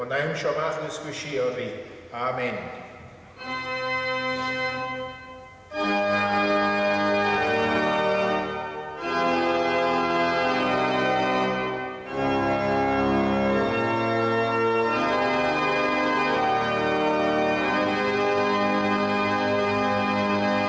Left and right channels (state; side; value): identical; both; correlation 1.00